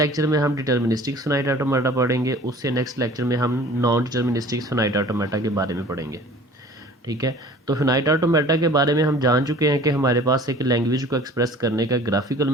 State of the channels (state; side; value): normal; both; correlation 0.47